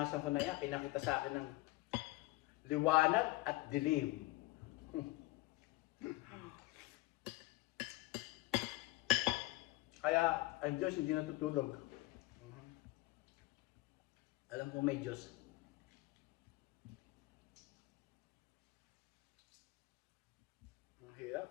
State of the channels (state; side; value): quieter; right; 20.0 dB